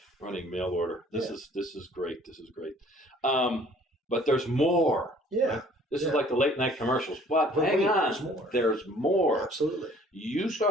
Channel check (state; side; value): normal; both; correlation 0.55